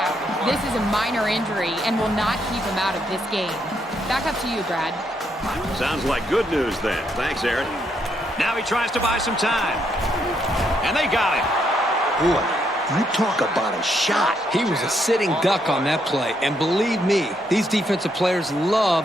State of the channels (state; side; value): normal; both; correlation 0.76